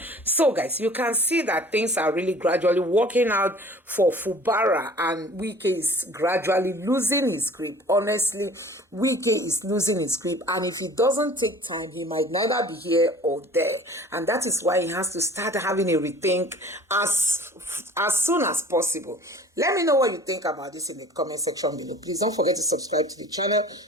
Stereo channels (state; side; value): normal; both; correlation 0.46